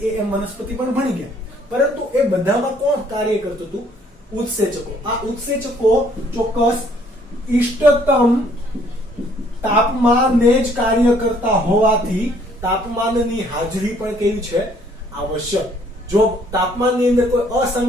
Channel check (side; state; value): both; normal; correlation 0.62